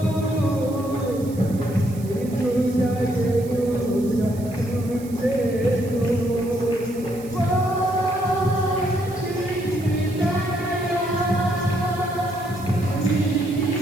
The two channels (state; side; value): noise; right; hiss, 20 dB below the sound